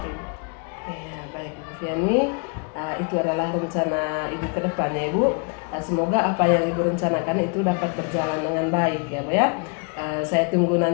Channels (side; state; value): right; quieter; 37.1 dB